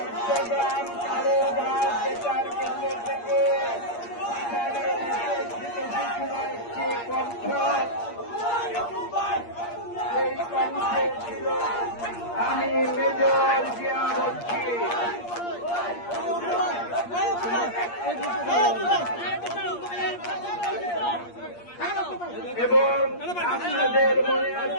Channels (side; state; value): right; late; 8.5 ms